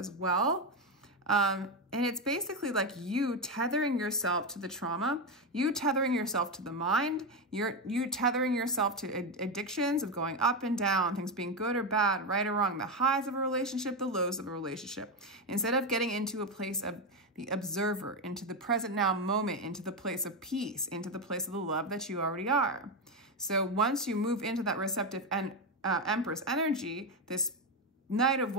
well. And it's basically like you tethering yourself to the trauma, you tethering yourself to the mind, you tethering yourself to addictions of going up and down, things being good or bad, right or wrong, the highs of a relationship, the lows of a relationship. Instead of getting into a place of the observer, into the present now moment, into the place of peace, into the place of the love that you already are. So once you move into that receptive and Empress energy, this Knight of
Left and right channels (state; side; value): normal; both; correlation 0.10